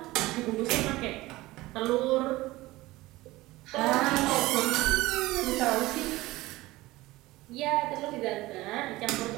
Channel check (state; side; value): quieter; left; 18.9 dB